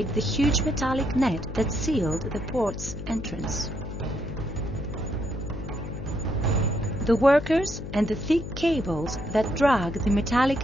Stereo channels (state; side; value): noise; left; hum, 9 dB below the sound